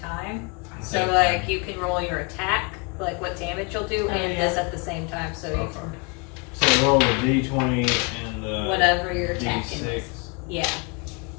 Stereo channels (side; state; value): right; quieter; 31.3 dB